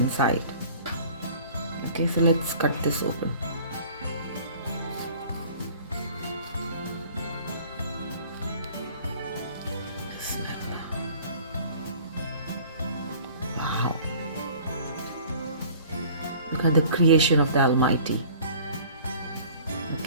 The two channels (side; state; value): both; inverted; correlation -0.48